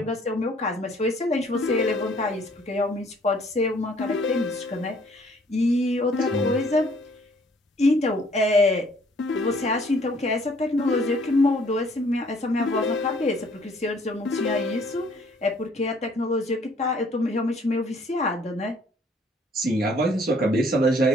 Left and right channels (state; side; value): normal; both; correlation 0.60